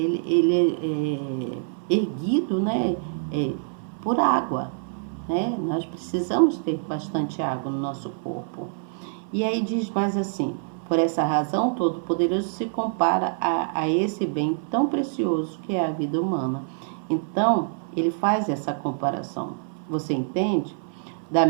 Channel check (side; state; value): left; silent; 58 dB below the other